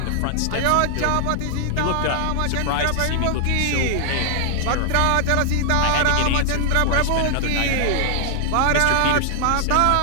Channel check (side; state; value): both; different; correlation 0.00